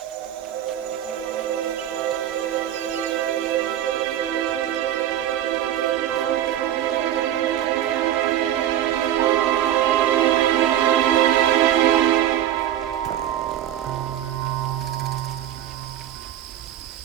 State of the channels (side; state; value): left; quieter; 11.6 dB